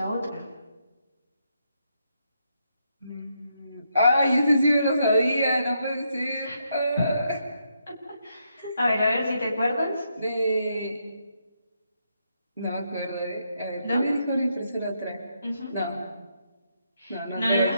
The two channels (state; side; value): inverted; both; correlation -0.79